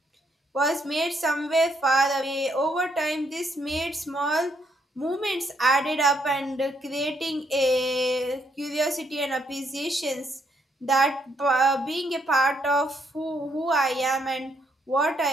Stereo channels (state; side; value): normal; both; correlation 0.73